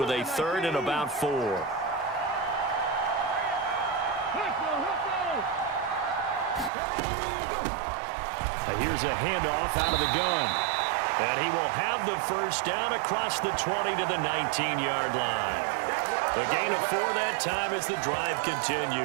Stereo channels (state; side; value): drops out; left; at 6.7 s